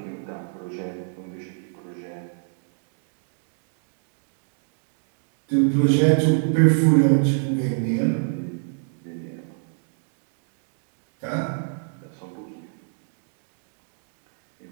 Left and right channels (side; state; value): left; silent; digital silence